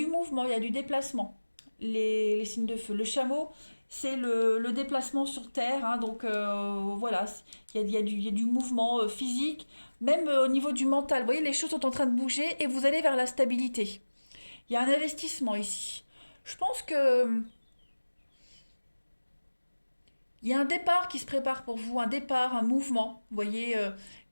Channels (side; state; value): both; inverted; correlation -1.00